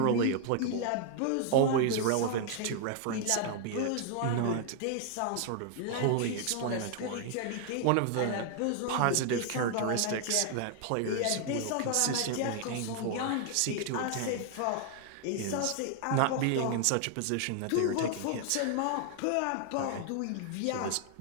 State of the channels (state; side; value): different; both; correlation 0.00